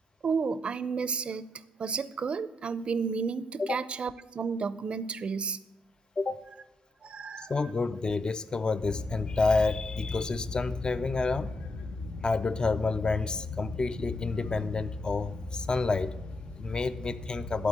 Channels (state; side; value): normal; both; correlation 0.82